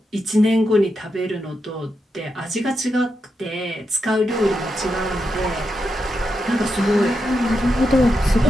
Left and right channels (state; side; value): normal; both; correlation 0.86